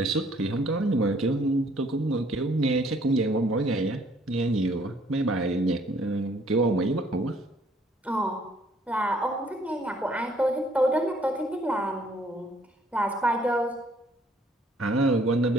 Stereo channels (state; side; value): normal; both; correlation 0.62